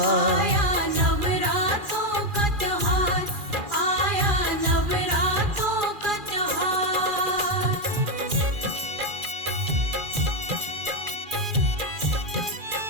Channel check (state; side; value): late; left; 2.4 ms